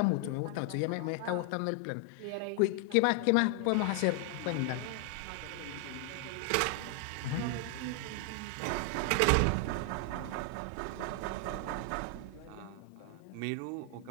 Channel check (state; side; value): different; both; correlation 0.00